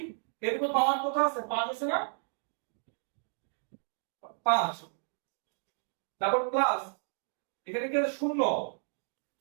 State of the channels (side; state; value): left; silent; digital silence